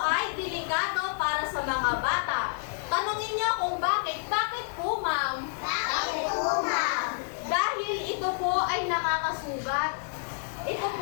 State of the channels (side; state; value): right; silent; digital silence